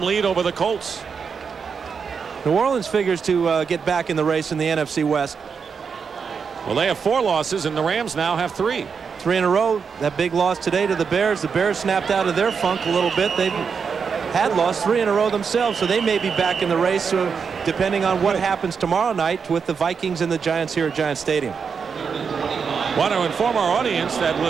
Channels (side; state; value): left; quieter; 6.0 dB